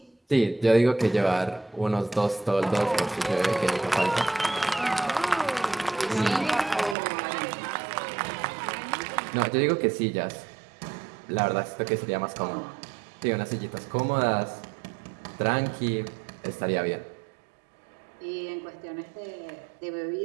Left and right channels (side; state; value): left; drops out; at 7.0 s